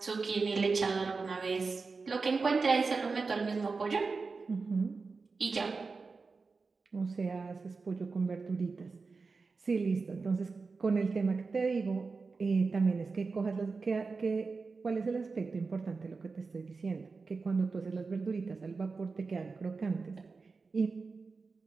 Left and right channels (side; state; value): left; quieter; 4.4 dB